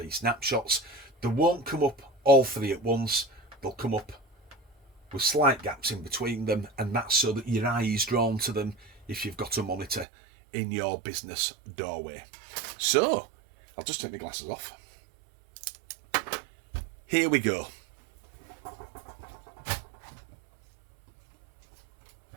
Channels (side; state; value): left; drops out; at 10.1 s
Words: snapshots. They won't come up all 3 at once, they'll come up with slight gaps in between them, and that's so that your eye is drawn to them if you've got a monitor in your business doorway. So, I'll just take my glasses off. Here we go.